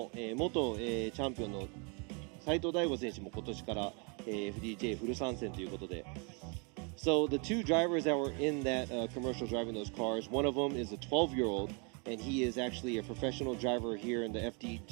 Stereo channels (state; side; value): quieter; left; 34.7 dB